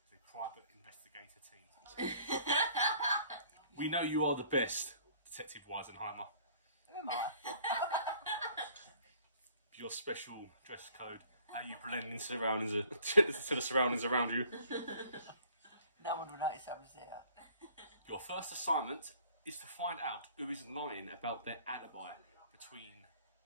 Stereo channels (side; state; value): both; inverted; correlation -0.55